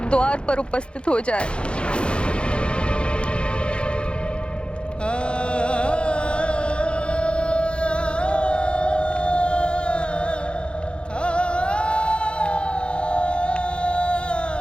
द्वार पर उपस्थित हो जाए।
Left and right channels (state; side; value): late; right; 0.056 ms